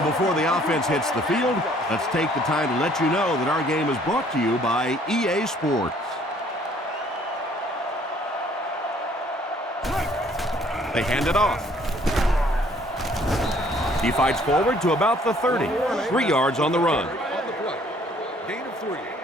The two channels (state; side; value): normal; both; correlation 0.60